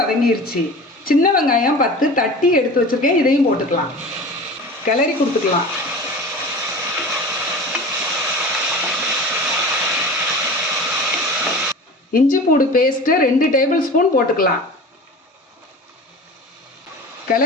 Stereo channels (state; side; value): normal; both; correlation 0.35